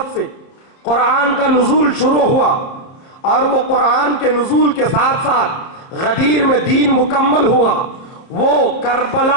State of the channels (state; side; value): late; right; 30 ms